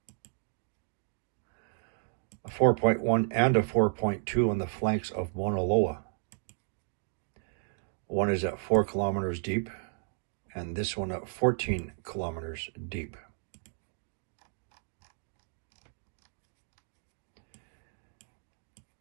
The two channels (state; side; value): silent; left; digital silence